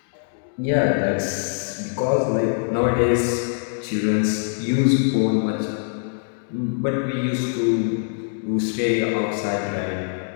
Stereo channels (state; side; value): silent; right; digital silence